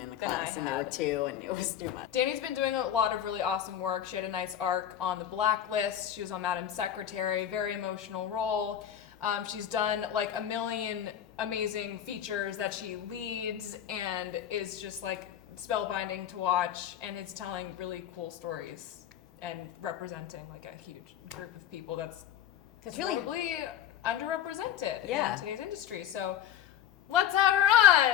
in the than I class, and there were had. 2, and it was too much. Danny's been doing a lot of really awesome work. She had a nice arc on The Blacklist. She was on Madam Secretary, very emotional role. She's done like a million amazing features that she leads and is just like spellbinding to watch, and is telling really cool stories and representing like a huge group of people that's really probably underrepresented Yeah. in today's industry. So let's have her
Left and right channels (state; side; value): quieter; right; 10.2 dB